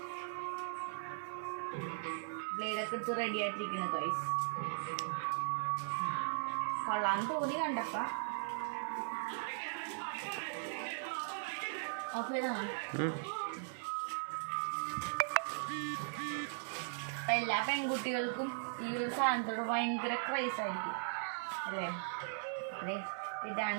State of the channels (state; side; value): silent; left; 52 dB below the other